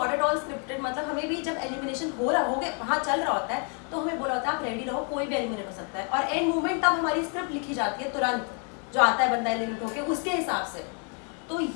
at all scripted. मतलब हमें भी जब एलिमिनेशन हो गया वहाँ चल रहा होता है तो हमें बोला होता है आप रेडी रहो, कोई भी एलिमिनेट हो सकता है, और एंड मोमेंट तब हमारी स्क्रिप्ट लिखी जाती है तुरंत, जो आता है बंदा एलिमिनेट होकर उसके हिसाब से। तो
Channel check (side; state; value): right; quieter; 39.8 dB